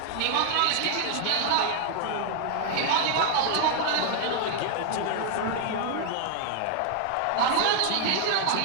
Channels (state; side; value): different; both; correlation 0.00